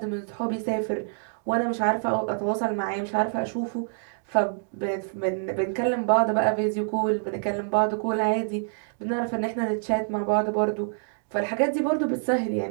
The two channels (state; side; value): silent; left; digital silence